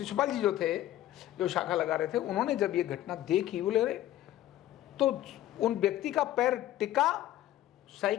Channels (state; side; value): quieter; right; 13.6 dB